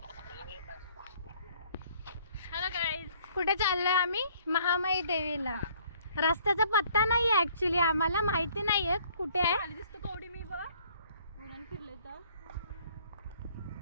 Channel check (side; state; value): both; inverted; correlation -0.60